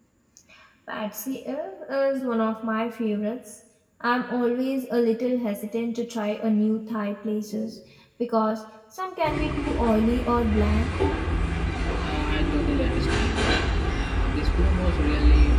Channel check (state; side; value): identical; both; correlation 1.00